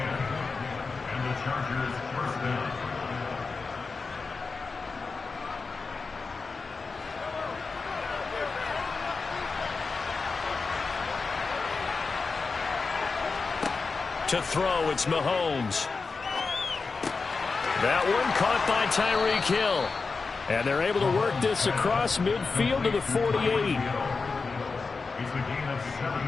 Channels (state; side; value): quieter; right; 4.4 dB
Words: the Chargers first down. To throw, it's Mahomes. That one caught by Tyreek Hill. And they're able to work this across midfield to the 48. It's a gain of